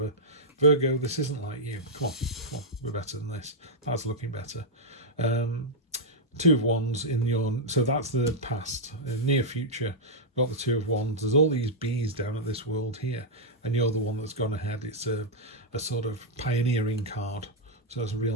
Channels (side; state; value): both; normal; correlation -0.05